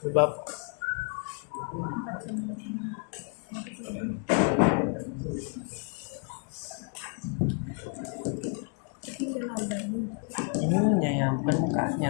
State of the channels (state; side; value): quieter; right; 39.9 dB